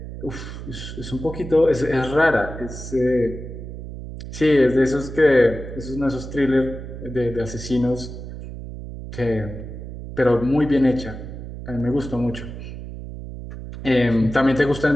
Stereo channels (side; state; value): right; noise; hum, 10 dB below the sound